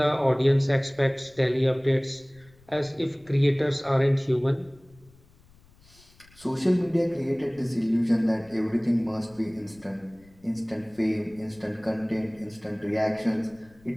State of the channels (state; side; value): noise; left; rumble, 28 dB below the sound